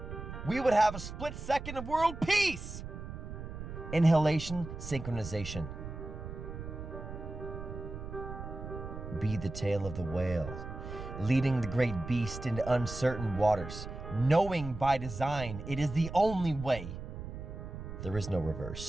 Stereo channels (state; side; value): noise; right; rumble, 9 dB below the sound